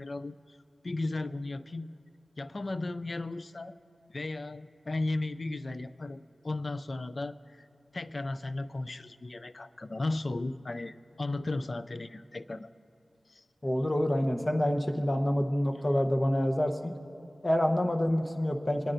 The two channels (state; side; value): normal; both; correlation 0.98